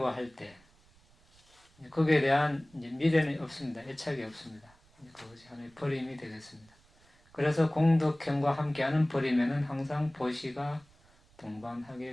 할 때 거기에 대한 이제 미련이 없습니다. 애착이 없습니다. 그것이 하나의 버림이 되겠습니다. 그래서 공덕형과 함께하는 버림에는 항상 보시가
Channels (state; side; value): noise; right; rumble, 30 dB below the sound